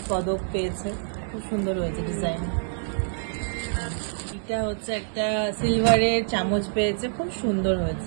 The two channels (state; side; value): silent; left; digital silence